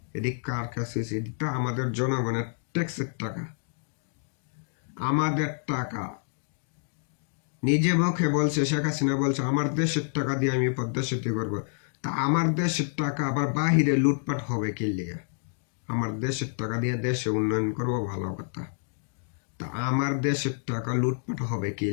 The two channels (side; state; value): right; silent; digital silence